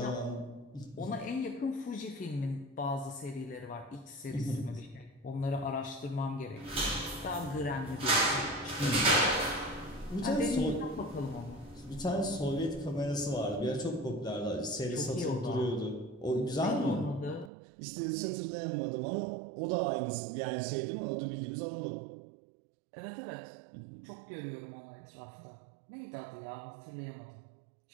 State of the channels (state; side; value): drops out; left; at 17.5 s